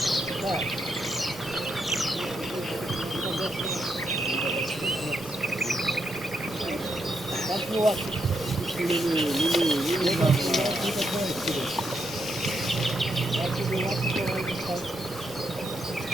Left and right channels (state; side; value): normal; both; correlation 0.80